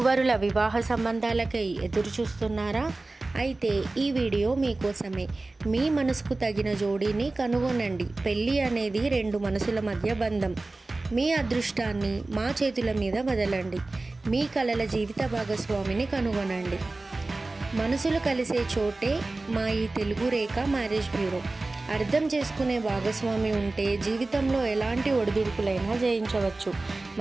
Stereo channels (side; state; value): left; quieter; 3.2 dB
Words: వివాహ సంబంధాలకై ఎదురు చూస్తున్నారా? అయితే ఈ వీడియో మీకోసమే. మీ మనసుకు తగిన జోడీని కనుగొనండి. పెళ్ళి అనేది రెండు మనసుల మధ్య బంధం. మీ అదృష్టాన్ని మా చేతుల మీద వదలండి. మీ కలల జీవిత భాగస్వామిని కనుగొనండి. మనసులు కలిసే చోటే మా ఈ తెలుగు రేఖ మ్యారేజ్ బ్యూరో. అర్థం చేసుకునే భాగస్వామి ఉంటే జీవితంలో ఎలాంటి ఒడిదుడుకులైనా జయించవచ్చు.